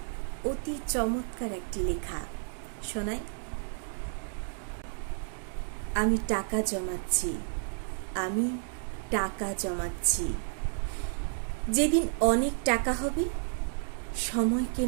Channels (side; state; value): left; silent; 57 dB below the other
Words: অতি চমৎকার একটি লেখা শোনাই। আমি টাকা জমাচ্ছি, আমি টাকা জমাচ্ছি। যেদিন অনেক টাকা হবে, সময়